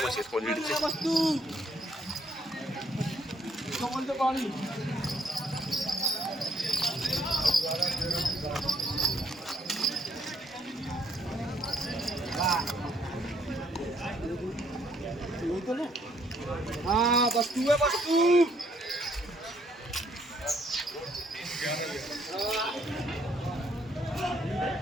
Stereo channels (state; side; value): normal; both; correlation 0.68